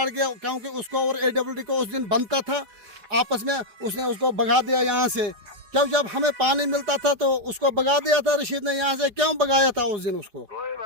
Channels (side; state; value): left; late; 5.2 ms